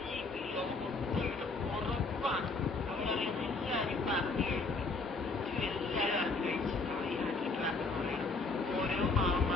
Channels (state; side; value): quieter; right; 3.7 dB